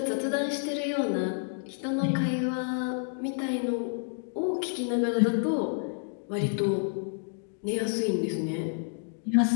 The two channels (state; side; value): silent; right; digital silence